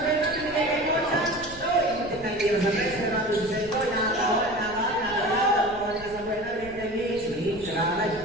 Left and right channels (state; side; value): noise; left; rumble, 17 dB below the sound